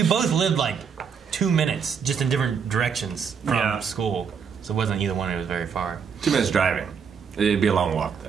both lived like 2 minutes, just in different directions from school. So it wasn't either one. It was very far. 2 minutes driving. It'd be a long walk,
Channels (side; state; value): left; quieter; 6.6 dB